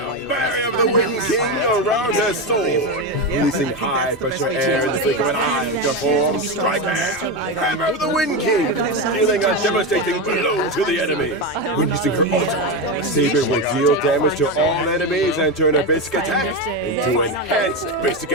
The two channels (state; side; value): normal; both; correlation 0.14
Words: barrier of the Wind King around her sword, releasing high pressure air in the flick of an eye to form Striker, Hammer of the Wind King, dealing a devastating blow to the enemy. When using her ultimate, Saber will deal damage to all enemies and turn her basic attack into enhanced basic